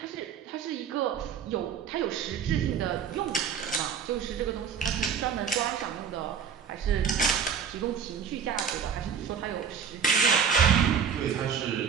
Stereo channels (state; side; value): quieter; left; 7.1 dB